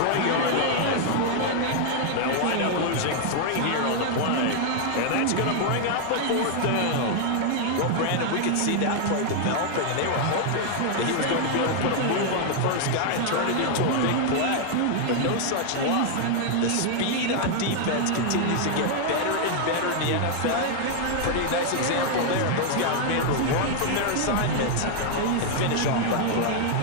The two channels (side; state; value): both; different; correlation 0.00